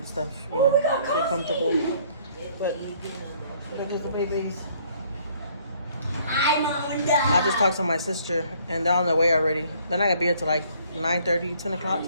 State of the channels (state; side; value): inverted; both; correlation -0.61